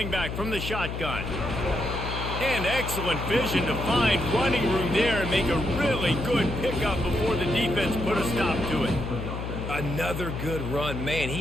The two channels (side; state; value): left; noise; hum, 5 dB below the sound